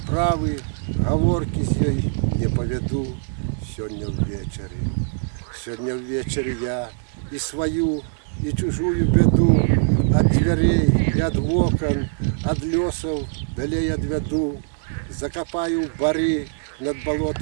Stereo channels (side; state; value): left; silent; digital silence